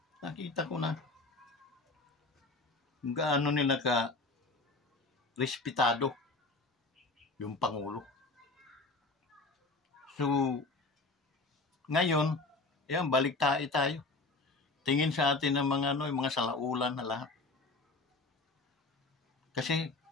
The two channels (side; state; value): right; quieter; 3.4 dB